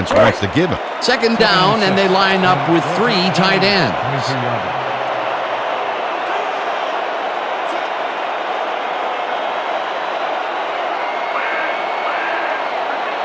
wants to give him. Second down, and they line up with 3 tight ends.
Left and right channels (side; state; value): both; identical; correlation 1.00